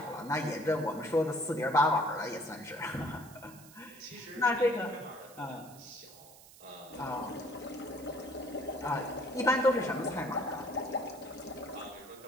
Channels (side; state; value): right; noise; hiss, 20 dB below the sound